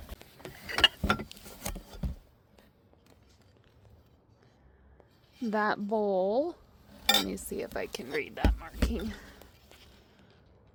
That bowl. Let me see if I can read that marking.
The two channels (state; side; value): identical; both; correlation 1.00